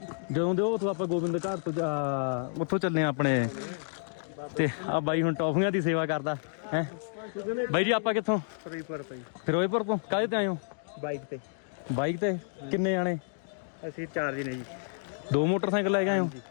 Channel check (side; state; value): right; silent; digital silence